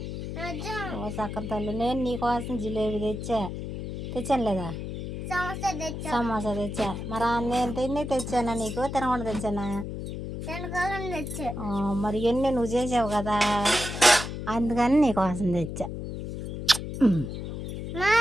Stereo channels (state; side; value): noise; left; hum, 6 dB below the sound